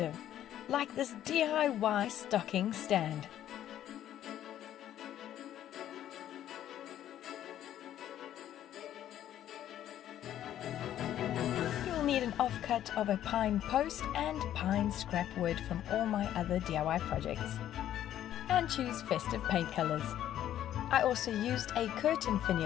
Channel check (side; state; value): right; quieter; 11.5 dB